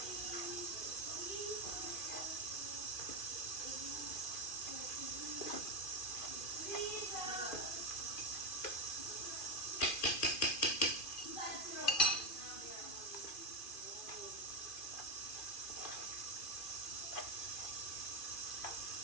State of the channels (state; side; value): late; right; 2.4 ms